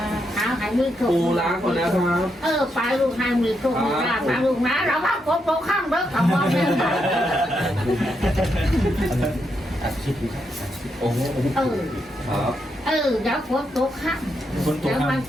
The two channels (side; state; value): both; normal; correlation 0.81